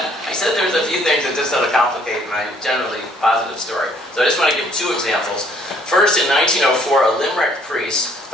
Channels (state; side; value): normal; both; correlation 0.63